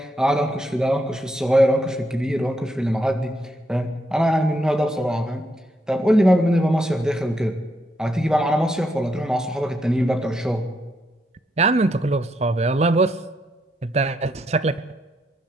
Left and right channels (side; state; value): both; normal; correlation 0.78